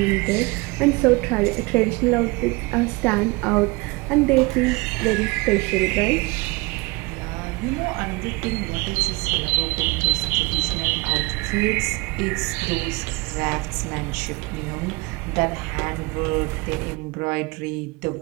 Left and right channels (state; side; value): quieter; left; 25.3 dB